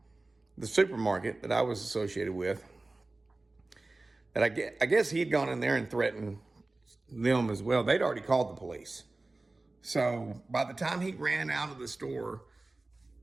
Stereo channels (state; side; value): quieter; left; 3.1 dB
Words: supermarket that I was associated with. That I guess he'd gone in there and threatened them as well. They'd already called the police. So by the time he ran out of the store,